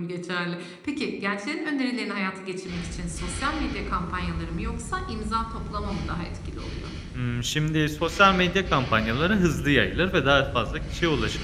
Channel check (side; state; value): both; identical; correlation 1.00